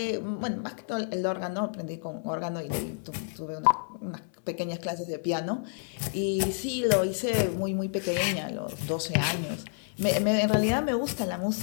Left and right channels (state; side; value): silent; right; digital silence